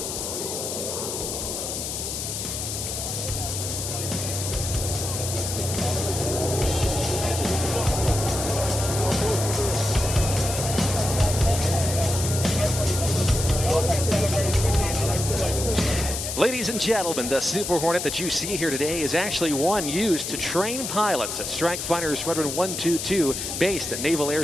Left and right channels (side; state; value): left; noise; hiss, 4 dB below the sound